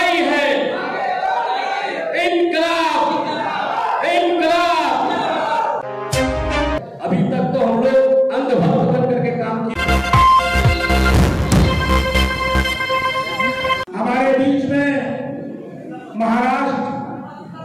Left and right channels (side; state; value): both; identical; correlation 1.00